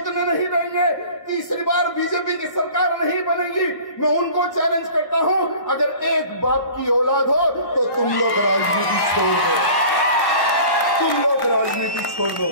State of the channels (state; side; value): late; right; 1.1 ms